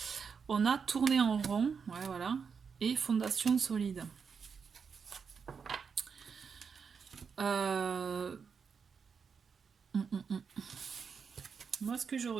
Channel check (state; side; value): quieter; left; 6.0 dB